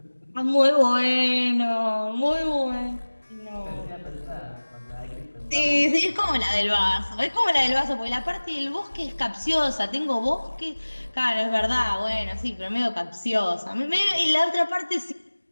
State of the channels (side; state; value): both; inverted; correlation -1.00